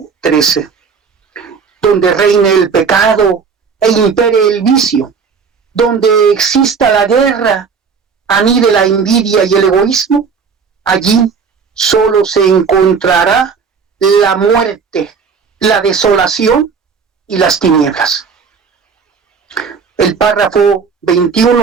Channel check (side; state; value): left; quieter; 5.7 dB